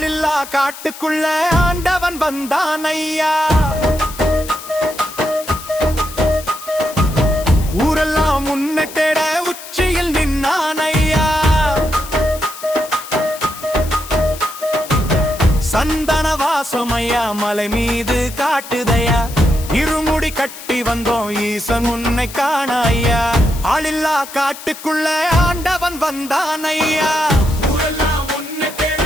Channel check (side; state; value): left; noise; hiss, 14 dB below the sound